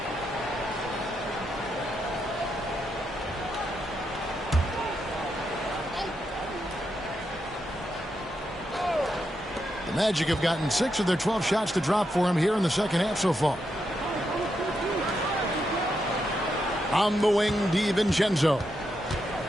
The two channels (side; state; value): both; normal; correlation 0.83